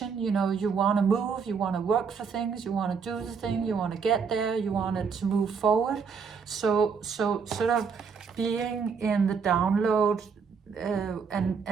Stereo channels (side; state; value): left; quieter; 5.9 dB